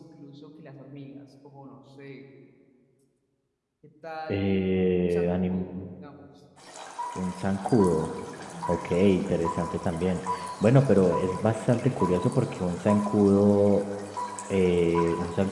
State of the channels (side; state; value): both; identical; correlation 1.00